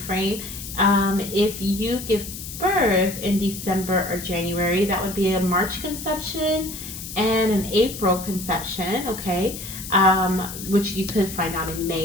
frame. If you give birth in December or January, that would be a March conception and an April conception, okay? Which you could find out in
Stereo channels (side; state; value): left; noise; hiss, 10 dB below the sound